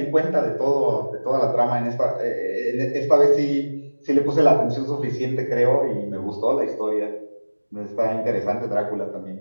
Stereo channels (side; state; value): both; inverted; correlation -1.00